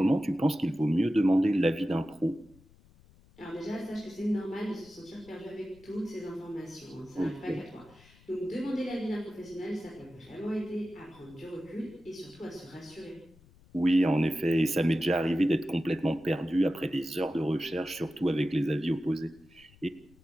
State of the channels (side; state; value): left; noise; rumble, 27 dB below the sound